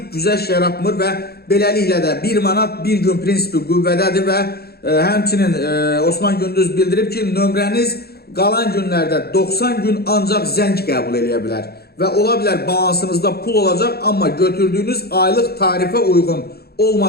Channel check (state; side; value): late; right; 0.46 ms